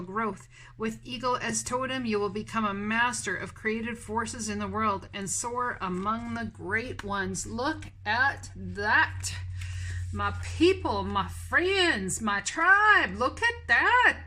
growth. With Eagle as totem, you will become a master of creative forces in the world and soar among the great ones. Look at that. My people, my friends, my tribe, look at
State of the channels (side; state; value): both; identical; correlation 1.00